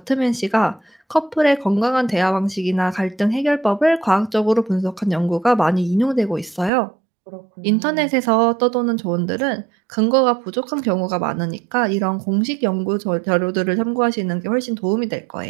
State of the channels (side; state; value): left; drops out; at 6.7 s